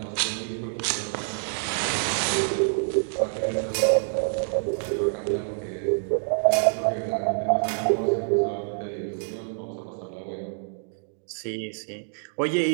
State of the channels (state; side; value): silent; left; digital silence